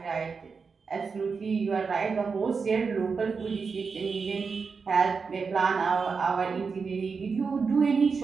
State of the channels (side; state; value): left; quieter; 5.2 dB